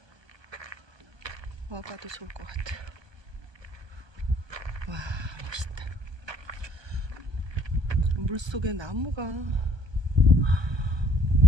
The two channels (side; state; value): left; late; 1.3 ms